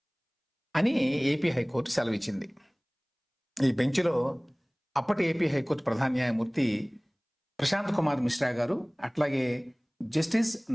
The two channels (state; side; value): identical; both; correlation 1.00